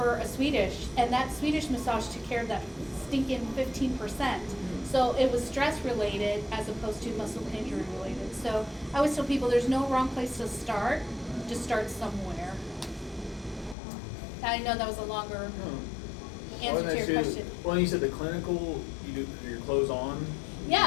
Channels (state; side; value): drops out; right; at 13.8 s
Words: a Swedish, and that Swedish massage took care of that stinking 15%. So it was stress related as opposed to muscle injury related. So I always tell people there's no wrong place to start. Just start somewhere. I know that was a longer answer to your question. Well, you said the clinical, you do your clothes on.